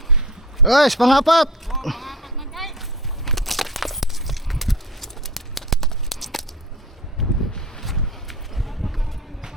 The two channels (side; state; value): both; normal; correlation 0.36